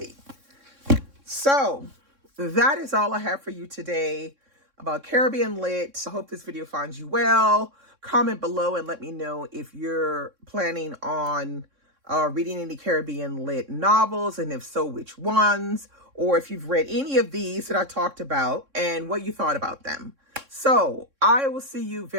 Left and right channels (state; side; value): late; left; 3.6 ms